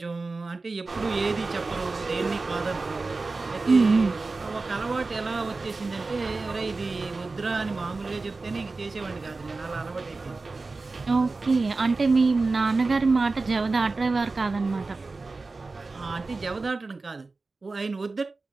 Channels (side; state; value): left; quieter; 3.7 dB